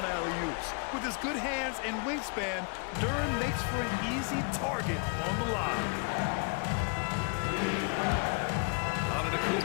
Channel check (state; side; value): quieter; right; 36.3 dB